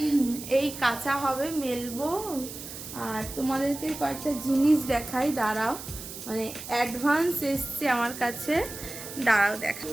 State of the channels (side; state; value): right; noise; hiss, 11 dB below the sound